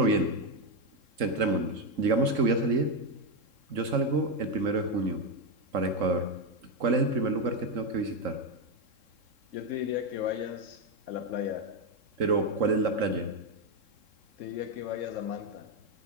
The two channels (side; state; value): left; late; 3.7 ms